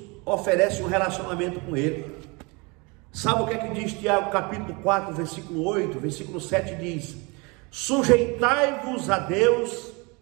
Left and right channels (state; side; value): quieter; left; 28.4 dB